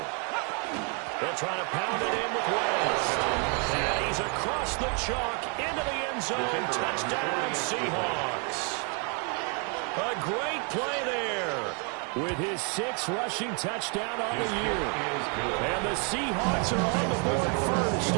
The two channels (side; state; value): left; quieter; 37.4 dB